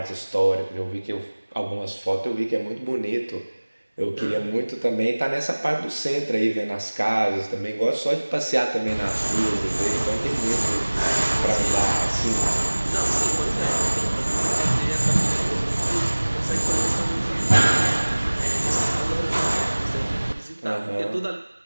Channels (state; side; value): inverted; both; correlation -1.00